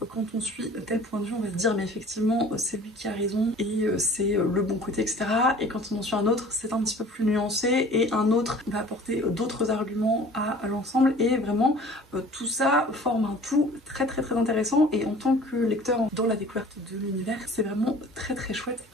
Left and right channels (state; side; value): normal; both; correlation 0.47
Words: quand on suit tel point de vue, on va se dire mais effectivement c'est lui qui a raison et c'est le bon côté, etc. Et quand on en suit un autre, c'est un petit peu plus nuancé, et un autre va apporter d'autres arguments à l'ensemble, et vraiment tout ça forme un tout très intéressant. Et en tant que lecteur dans la découverte de l'univers, c'est vraiment très chouette